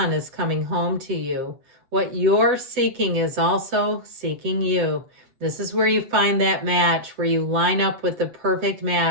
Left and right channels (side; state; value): left; late; 8.1 ms